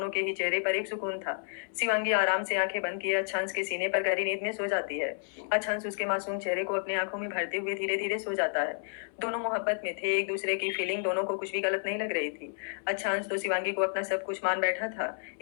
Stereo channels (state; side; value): silent; right; 57 dB below the other